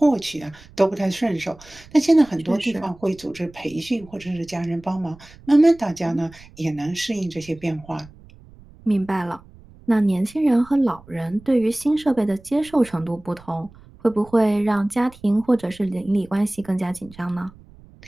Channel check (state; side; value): noise; right; rumble, 23 dB below the sound